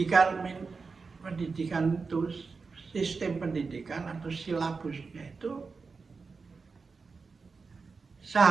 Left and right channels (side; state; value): left; quieter; 4.6 dB